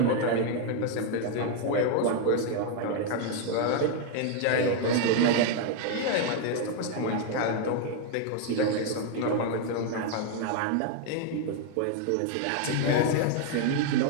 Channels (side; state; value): both; different; correlation 0.01